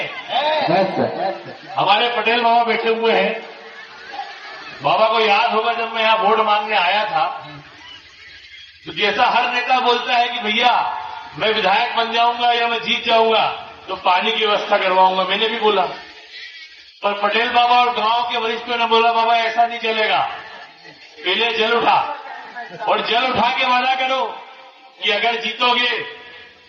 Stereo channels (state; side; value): identical; both; correlation 1.00